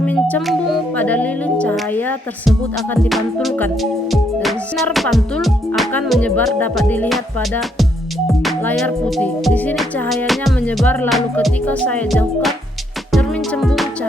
cembung pada lilin, cahaya tersebut akan dipantulkan dan sinar pantul akan menyebar. Dapat dilihat pada layar putih. Di sini cahayanya menyebar, lalu ketika saya jauhkan cermin cembung,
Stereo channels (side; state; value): both; normal; correlation 0.73